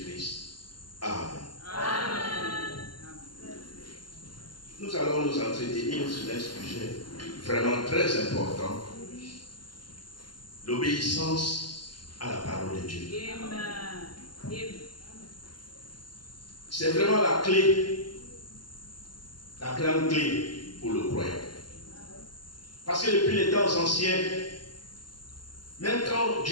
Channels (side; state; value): right; late; 0.71 ms